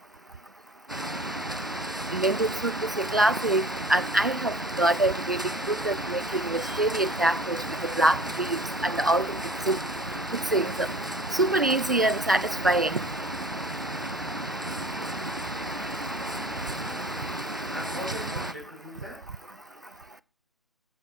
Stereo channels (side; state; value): both; normal; correlation 0.47